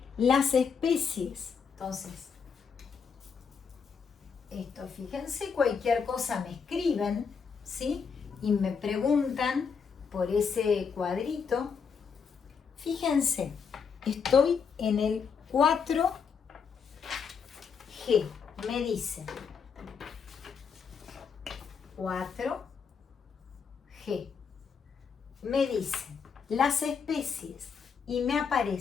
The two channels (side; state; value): right; quieter; 6.1 dB